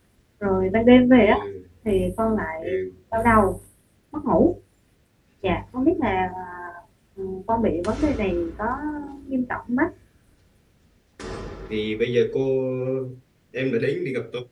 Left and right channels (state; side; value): identical; both; correlation 1.00